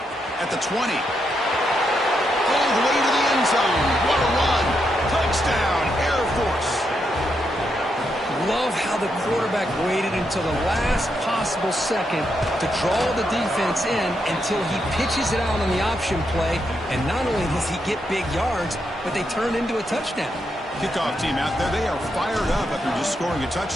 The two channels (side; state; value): both; normal; correlation 0.81